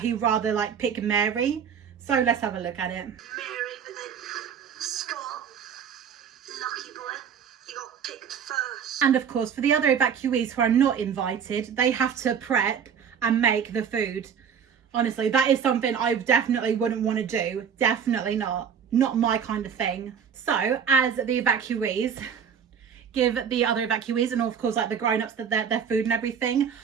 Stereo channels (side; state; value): left; quieter; 7.4 dB